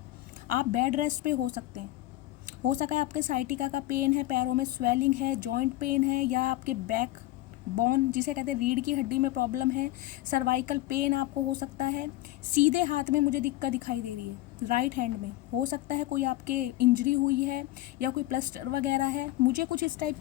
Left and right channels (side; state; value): right; quieter; 16.6 dB